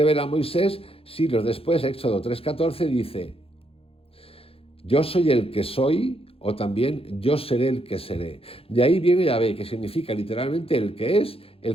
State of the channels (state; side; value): late; right; 0.27 ms